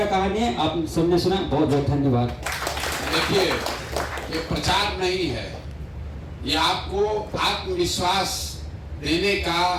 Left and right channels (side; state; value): both; identical; correlation 1.00